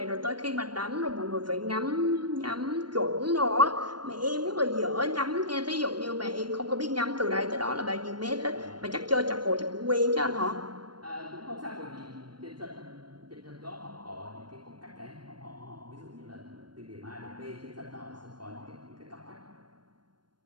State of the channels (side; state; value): left; late; 0.71 ms